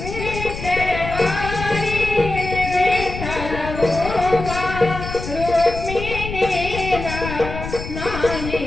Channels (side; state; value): left; noise; rumble, 8 dB below the sound